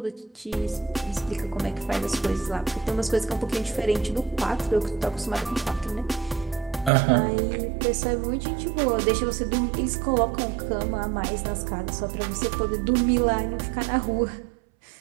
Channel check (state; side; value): drops out; left; at 6.9 s